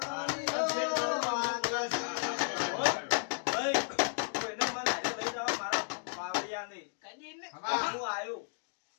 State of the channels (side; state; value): right; silent; digital silence